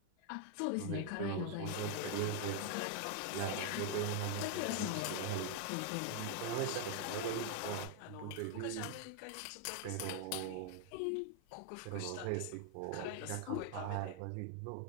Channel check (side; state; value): both; different; correlation 0.00